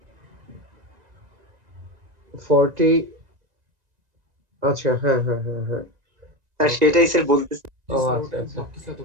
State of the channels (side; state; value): left; late; 1.9 ms